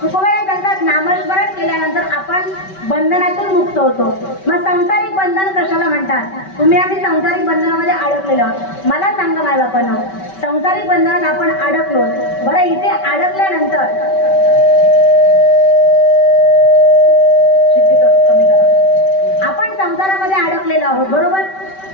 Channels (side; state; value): right; late; 5.2 ms